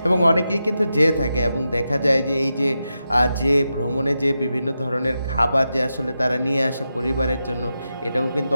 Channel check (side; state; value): both; inverted; correlation -0.89